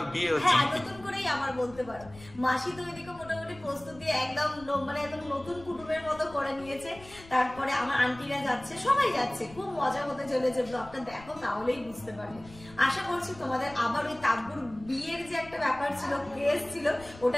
বিয়ে হচ্ছে। হ্যাঁ, নতুন করেই আবার বলতে পারো। মাসি তো ওইদিকে মোটামুটি প্রস্তুতি একদম মানে একদম নতুন কুটুমের মতো করে নিয়েছে। তারপরে আমার আন্টিরা যাচ্ছে, সবাই যাচ্ছে, খুব মজা হতে চলেছে। ব্লগটা দেখো তাহলেই বুঝতে পারবে। আশা করছি তোমাদের আবার ওই তাব্বুর বিয়ের যে একটা ব্যাপার ছিল, ক্রেজ ছিল,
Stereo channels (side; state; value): left; noise; rumble, 20 dB below the sound